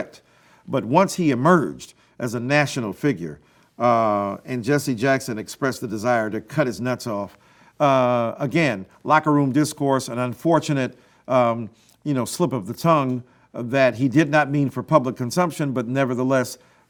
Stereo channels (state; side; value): identical; both; correlation 1.00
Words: But once he emerged as a national figure and Jesse Jackson expressed the desire to cut his nuts off, again, locker room discourse, an unfortunate slip of the tongue that he did not mean for public consumption, but nevertheless